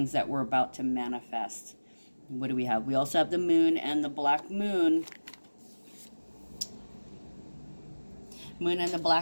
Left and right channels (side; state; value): both; inverted; correlation -1.00